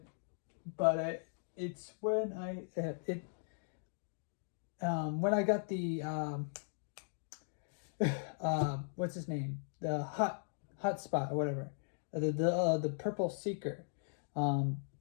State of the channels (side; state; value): right; silent; digital silence